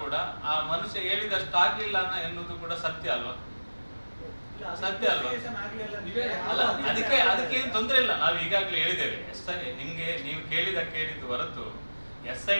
ಕೂಡ ಆ ಮನುಷ್ಯ ಹೇಳಿದಷ್ಟು ಆಗ್ಲಿಲ್ಲ ಎನ್ನುವುದು ಕೂಡ ಸತ್ಯ ಅಲ್ವಾ? ಸತ್ಯ ಅಲ್ವಾ? ಅಲ್ಲ, ಅದಕ್ಕೆ ಏನು ತೊಂದರೆ ಇಲ್ಲ. ನಾವು ಈಗಾಗಲೇ ಹೇಳಿದ್ದೇವೆ. ನಿಮ್ಗೆ ನೀವು ಕೇಳಿದ್ದು ಹೊರತು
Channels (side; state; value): both; inverted; correlation -1.00